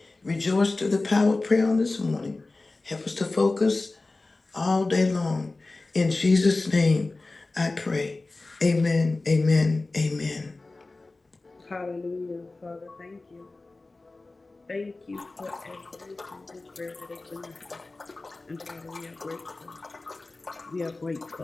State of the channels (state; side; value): quieter; right; 3.3 dB